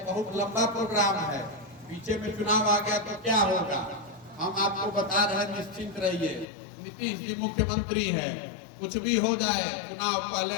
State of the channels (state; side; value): drops out; right; at 6.5 s